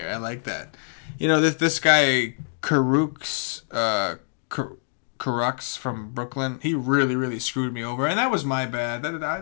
I like that. This guy Karux from Brooklyn, he really, really screwed me over, and that was my bad.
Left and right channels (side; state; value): right; silent; digital silence